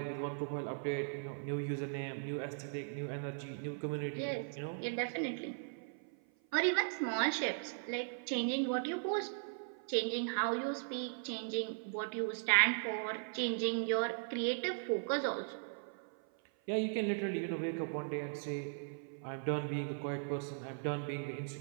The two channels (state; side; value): silent; left; 52 dB below the other